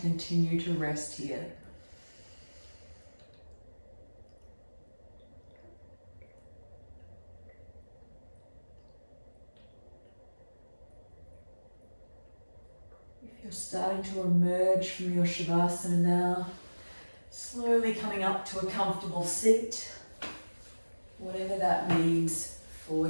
continue to rest here. If you're starting to emerge from your Shavasana now, slowly coming up to a comfortable seat, whatever that means for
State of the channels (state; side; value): inverted; both; correlation -1.00